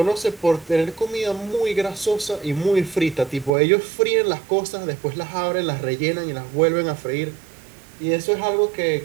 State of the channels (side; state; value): left; drops out; at 3.5 s